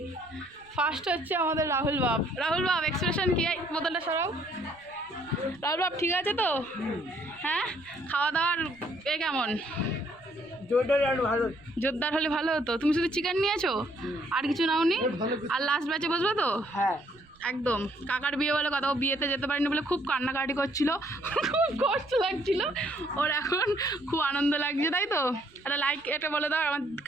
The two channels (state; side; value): noise; right; rumble, 28 dB below the sound